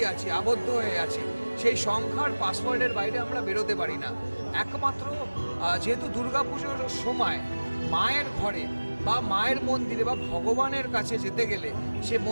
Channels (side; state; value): both; inverted; correlation -1.00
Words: আছি, আবদ্ধ হয়ে আছি। সেই সংখ্যার পাসওয়ার্ডের বাইরে আমরা বেরোতে পারি না। একমাত্র যেহেতু দুর্গাপুজোর সময় মায়ের ঘরে বা মায়ের মন্দিরে বা ভগবানের কাছে যেতে গেলে সে